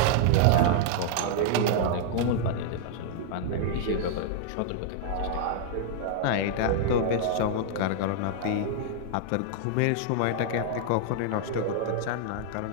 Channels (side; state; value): both; different; correlation -0.01